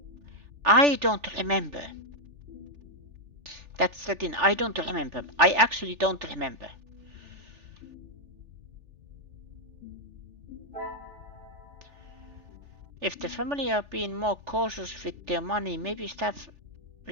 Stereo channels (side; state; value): left; late; 3.4 ms